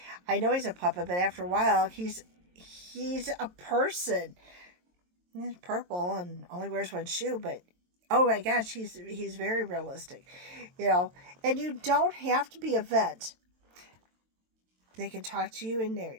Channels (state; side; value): late; left; 22 ms